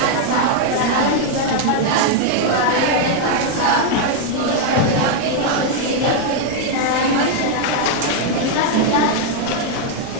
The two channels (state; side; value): different; both; correlation 0.00